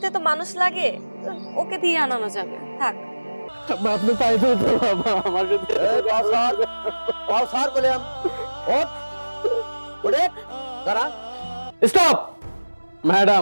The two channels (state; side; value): inverted; both; correlation -1.00